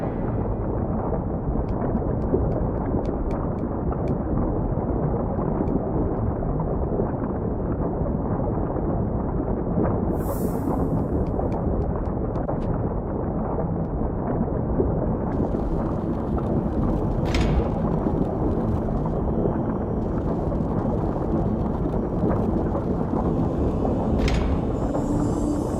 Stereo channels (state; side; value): identical; both; correlation 1.00